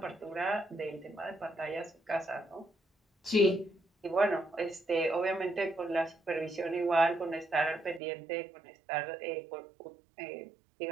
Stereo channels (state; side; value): drops out; left; at 8.0 s